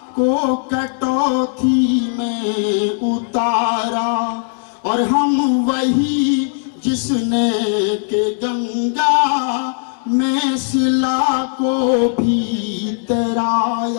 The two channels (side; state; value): right; silent; digital silence